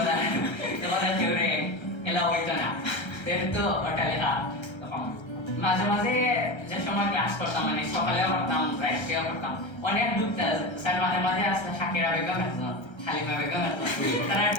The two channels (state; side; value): late; right; 1.3 ms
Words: এবার কেউরে এলা হইতো না, যেহেতু ওটা লেখা। তখন মাঝে মাঝে যে সময় ক্লাস করতাম মানে সকালেও করতাম রাত্রেও করতাম, অনেক ঢুকতাম স্যার মাঝে মাঝে আসলে শাকিরা বেগম আসতো, হালিমা বেগম আসতো,